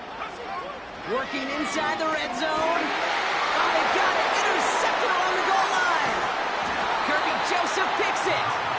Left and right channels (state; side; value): identical; both; correlation 1.00